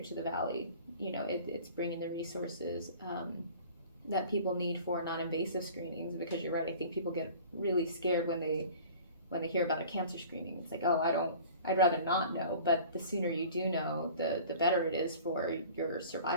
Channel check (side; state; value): both; inverted; correlation -0.44